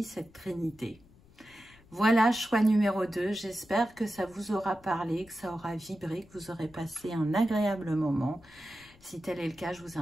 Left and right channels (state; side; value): noise; left; rumble, 26 dB below the sound